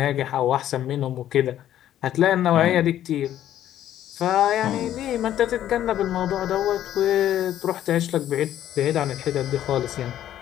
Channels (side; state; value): right; quieter; 11.7 dB